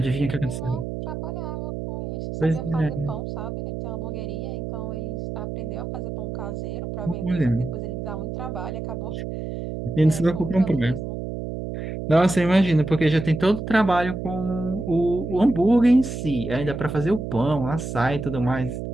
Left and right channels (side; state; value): right; noise; hum, 6 dB below the sound